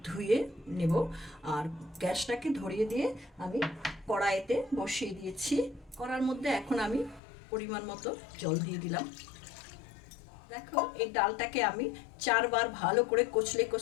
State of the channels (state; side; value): drops out; right; at 7.2 s